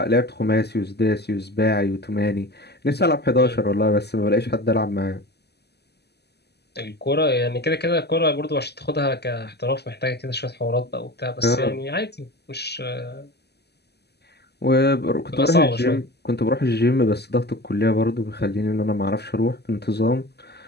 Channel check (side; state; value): right; late; 0.48 ms